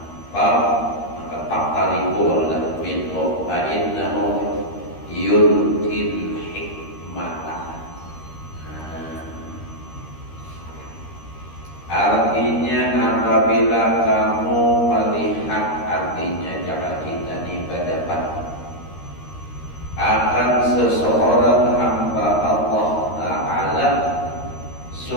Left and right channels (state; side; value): late; right; 13 ms